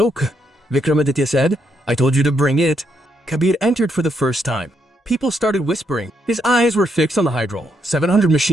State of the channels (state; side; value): normal; both; correlation 0.77